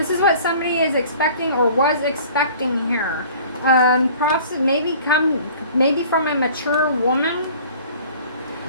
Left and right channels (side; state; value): both; inverted; correlation -0.48